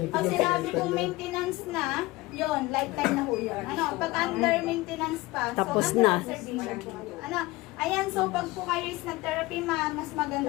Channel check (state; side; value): quieter; right; 20.4 dB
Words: Pag sinabi kong maintenance na, yon lifetime na po yun. Ano? Pag under maintenance pa, Tapos so na. under observation po kayo. Ano? Ayan, so pag po kayo is nag-therapy, mas